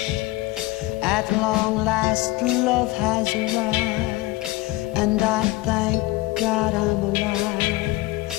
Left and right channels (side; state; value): right; quieter; 19.3 dB